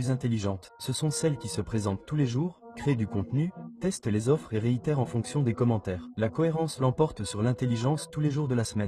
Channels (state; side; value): identical; both; correlation 1.00